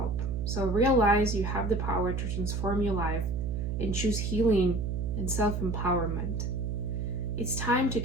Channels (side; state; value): right; noise; hum, 1 dB below the sound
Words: so realize you have the power to transform your life and choose healing and self-empowerment. It's time to